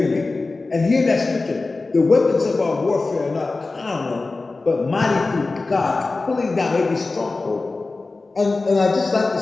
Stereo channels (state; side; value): quieter; right; 3.5 dB